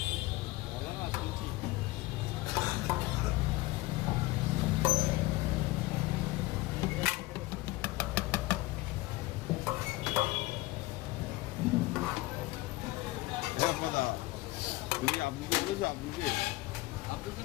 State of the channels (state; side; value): quieter; right; 19.7 dB